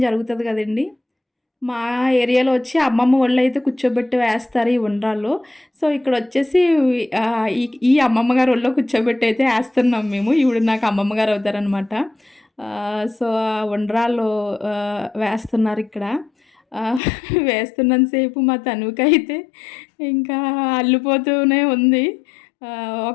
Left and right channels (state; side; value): drops out; right; at 17.0 s